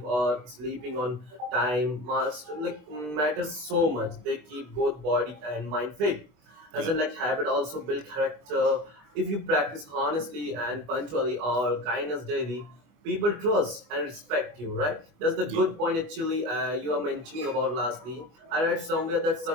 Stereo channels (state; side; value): late; left; 24 ms